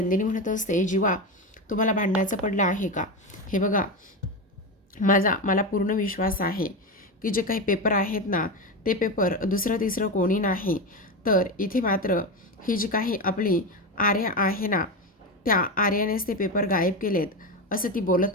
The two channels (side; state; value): both; normal; correlation 0.17